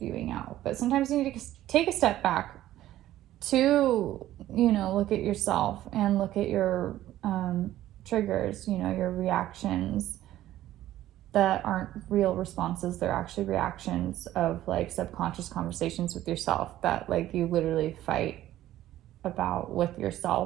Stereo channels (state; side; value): quieter; left; 13.9 dB